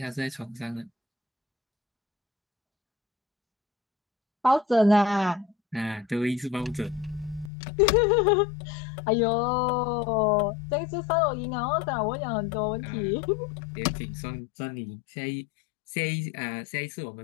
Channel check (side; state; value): right; drops out; at 7.5 s